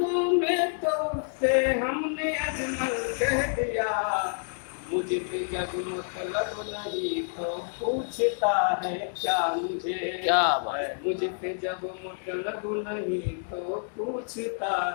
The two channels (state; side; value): silent; right; digital silence